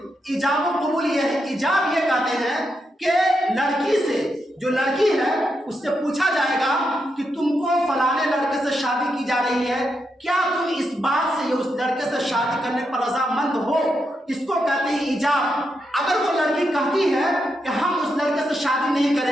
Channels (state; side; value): normal; both; correlation 0.83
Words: ایجاب و قبول یہ ہے، ایجاب یہ کہتے ہیں کہ لڑکی سے، جو لڑکی ہے اس سے پوچھا جائے گا کہ تم کو فلانے لڑکے سے شادی کی جا رہی ہے، کیا تم اس بات سے اس لڑکے سے شادی کرنے پر رضامند ہو؟ اس کو کہتے ہیں ایجاب۔ اگر وہ لڑکی کہتی ہے کہ ہم اس لڑکے سے شادی نہیں